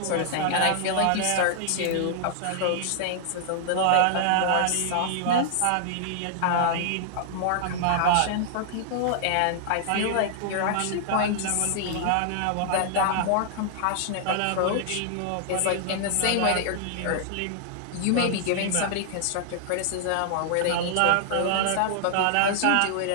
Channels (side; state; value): both; different; correlation -0.01